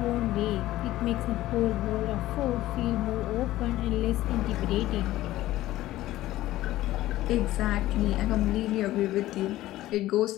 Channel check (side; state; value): right; quieter; 15.6 dB